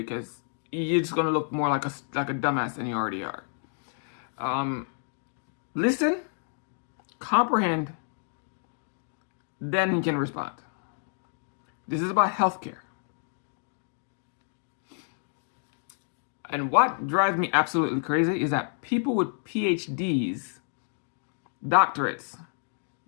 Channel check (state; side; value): silent; right; digital silence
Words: you're just gonna look more like a dumbass than you already are. Listen, comprehend, then you can respond. This is about healthcare. And what drives me absolutely crazy is that people with PhDs, doctorates,